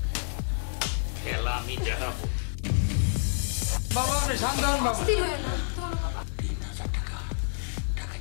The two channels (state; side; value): silent; right; digital silence